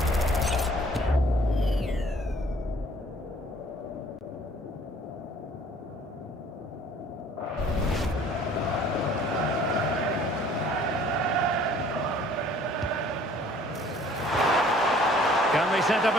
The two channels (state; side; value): normal; both; correlation 0.55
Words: Can they set up